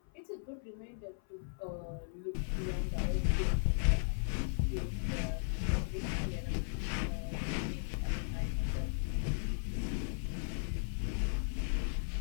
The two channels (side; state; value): right; silent; 53 dB below the other